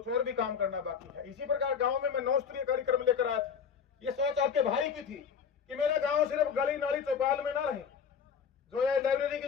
और भी काम करना बाकी है। इसी प्रकार गांव में मैं 9 स्तरीय कार्यक्रम लेकर आया था। ये सोच आपके भाई की थी कि मेरा गांव सिर्फ गली नाली चौपाल में ना रहे। जो ये लाइब्रेरी की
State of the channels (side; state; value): right; quieter; 6.9 dB